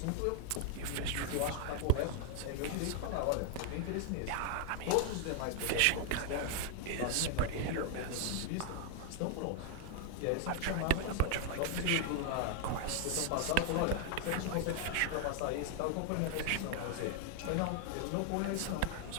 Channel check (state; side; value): different; both; correlation 0.00